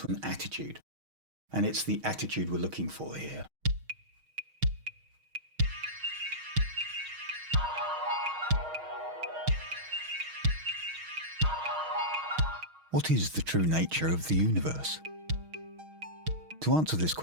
an attitude. And it's the attitude we're looking for here. What is the true nature of the universe? To answer this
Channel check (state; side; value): late; left; 6.4 ms